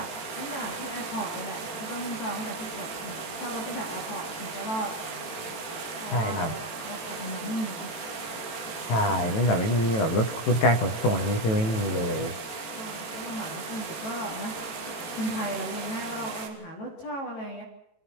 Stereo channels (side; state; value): right; late; 18 ms